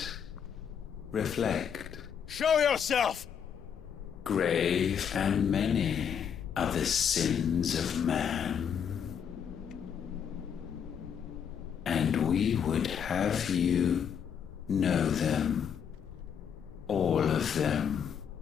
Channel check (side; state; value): right; quieter; 7.8 dB